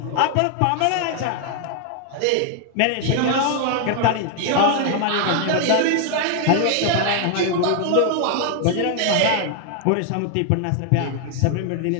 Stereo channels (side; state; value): both; different; correlation 0.00